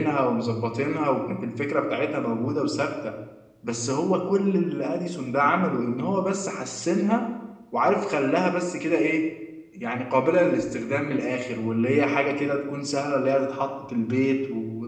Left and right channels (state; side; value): identical; both; correlation 1.00